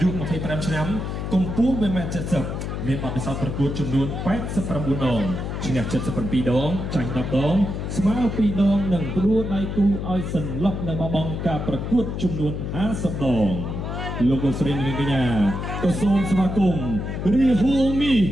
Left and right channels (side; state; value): left; noise; hum, 4 dB below the sound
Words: យុ25ឆ្នាំកម្ពស់ 1.70 ម៉ែត្រ មានបទពិសោធន៍ប្រកួតចំនួន89ដងឈ្នះ77ដងចាញ់10ដងស្មើ2ដងនិងផ្ដួលដៃគូឲ្យសន្លប់នៅបបង់ការប្រកួតចំនួន50ដងលោកស្រីនាងកញ្ញាក៏សូមស្វាគមន៍រាហូមី